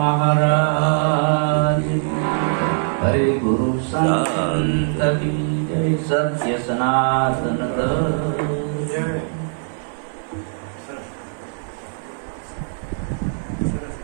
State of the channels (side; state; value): left; silent; 60 dB below the other